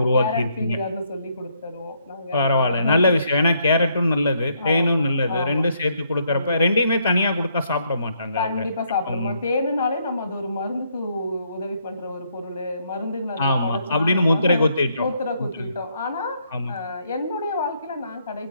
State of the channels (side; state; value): both; inverted; correlation -0.72